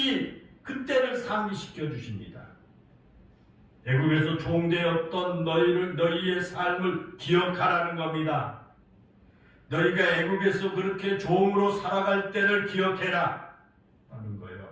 그때를 상기시켜 주십니다. 애국에서 종되었던 너희의 삶을 기억하라는 겁니다. 너희가 애국에서 그렇게 종으로 살아갈 때를 기억해라 하는 거예요.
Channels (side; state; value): both; identical; correlation 1.00